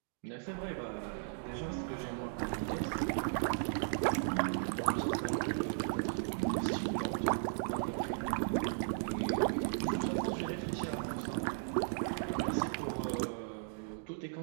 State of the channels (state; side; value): silent; left; digital silence